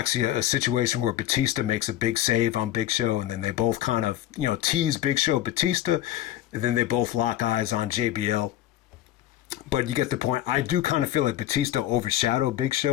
a situation where Batista makes a big save on Big Show, and then they both kind of, tease Big Show Batista, and then they both lock eyes on JBL. But you get the point. I do kind of feel like Batista overshadowed Big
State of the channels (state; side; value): quieter; right; 13.1 dB